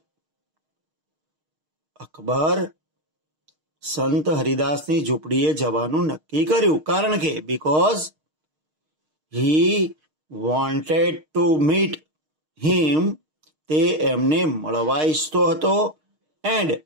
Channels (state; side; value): late; left; 6.5 ms